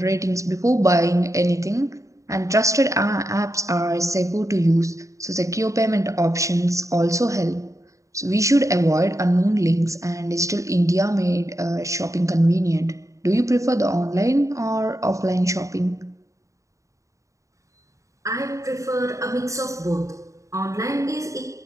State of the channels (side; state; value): left; late; 0.15 ms